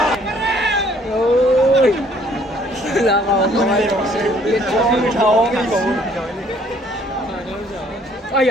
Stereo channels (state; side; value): normal; both; correlation 0.61